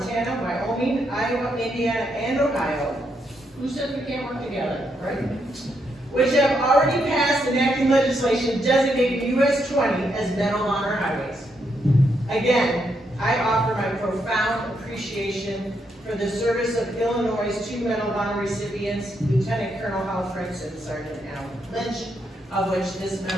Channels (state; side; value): normal; both; correlation 0.78